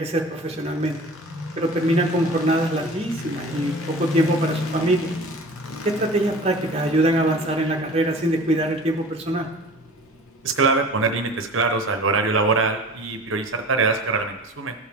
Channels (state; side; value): normal; both; correlation 0.41